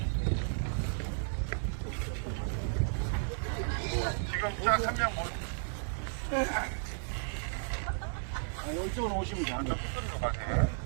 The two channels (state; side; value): silent; left; 55 dB below the other